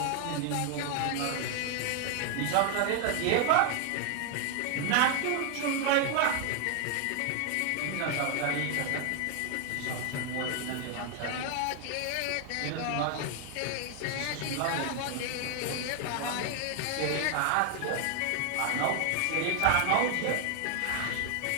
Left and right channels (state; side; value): different; both; correlation 0.00